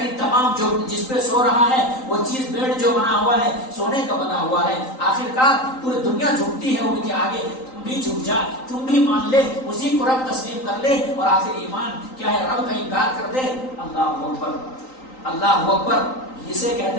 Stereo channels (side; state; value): right; late; 3.9 ms